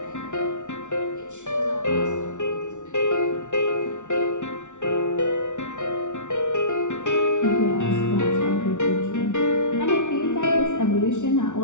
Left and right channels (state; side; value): late; right; 0.85 ms